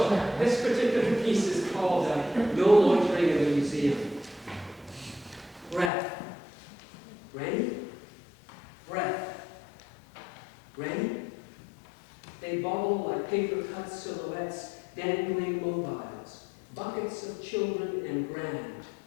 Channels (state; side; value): drops out; right; at 5.9 s